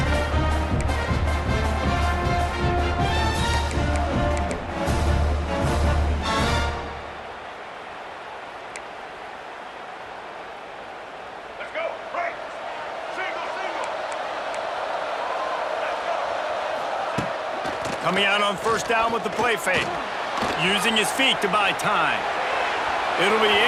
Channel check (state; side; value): identical; both; correlation 1.00